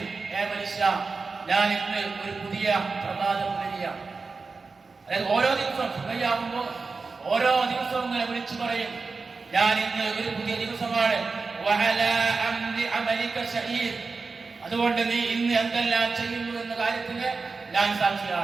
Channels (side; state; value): left; quieter; 4.3 dB